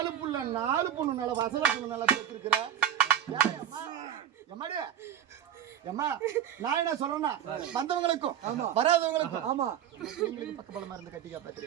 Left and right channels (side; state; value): left; quieter; 10.2 dB